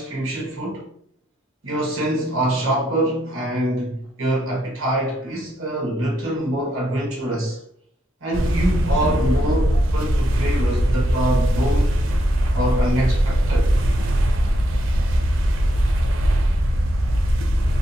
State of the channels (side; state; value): both; normal; correlation 0.79